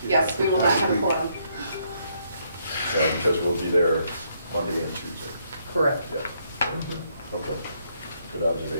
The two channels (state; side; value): inverted; both; correlation -0.72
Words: Yes, we will not have a quorum. Yeah, because we'll be there Monday and Tuesday. Correct. Yeah, Mhm. okay. Good